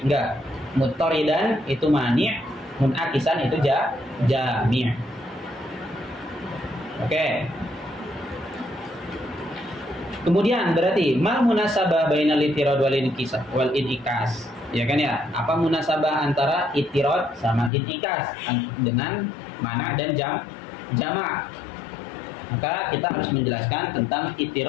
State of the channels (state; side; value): drops out; right; at 17.7 s